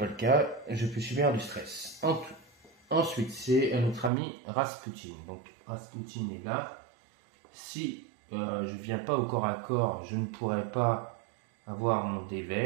le cas, je peux subir du stress. Ensuite, c'est notre ami Rasputin. Donc, Rasputin est là. Si je ne viens pas au corps à corps, je ne pourrai pas avoir mon dé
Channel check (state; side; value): drops out; left; at 4.1 s